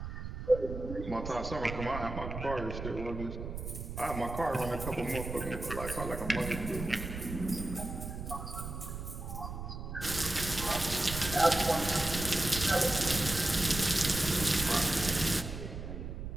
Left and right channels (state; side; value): noise; right; rumble, 7 dB below the sound